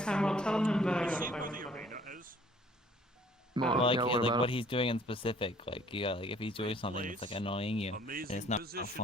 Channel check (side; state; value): both; normal; correlation 0.57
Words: time I'll tell him that I see don't where find the it funny. arena is. More, Like, yeah, like about what it? he's doing in specific, like you got, like if he's doing something that's like annoying you and it's not